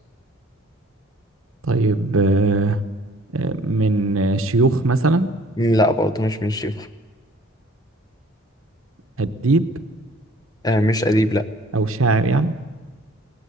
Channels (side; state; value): both; normal; correlation 0.54